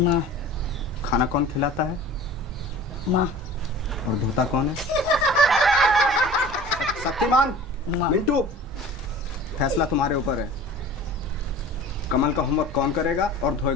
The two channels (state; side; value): normal; both; correlation 0.41